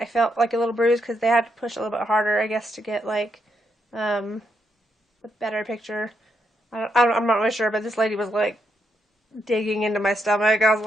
felt like a little bruised because they had to push a little bit harder, I guess, to get like a better picture. I'm not really sure, but this lady was like digging into my stomach. I was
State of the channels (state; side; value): normal; both; correlation 0.79